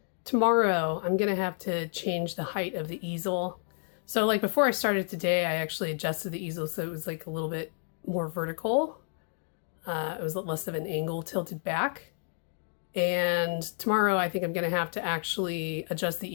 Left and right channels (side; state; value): right; silent; 58 dB below the other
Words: tomorrow I'm gonna have to change the height of the easel. So like before I started today, I actually adjusted the easel so it was like a little bit more vertical. It was less of an angle tilted back. And tomorrow I think I'm gonna have to actually adjust the